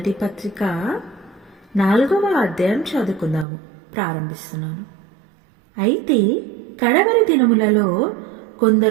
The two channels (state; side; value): drops out; left; at 3.5 s